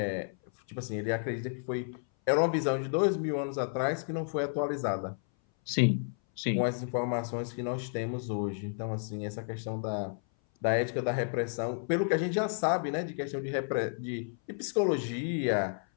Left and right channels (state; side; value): silent; right; 57 dB below the other